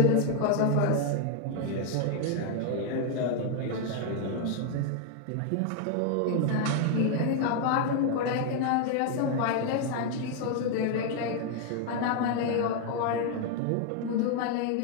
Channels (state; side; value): different; both; correlation 0.00